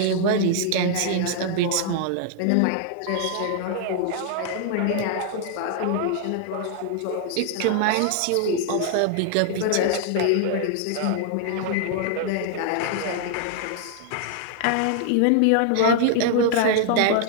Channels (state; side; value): different; both; correlation 0.00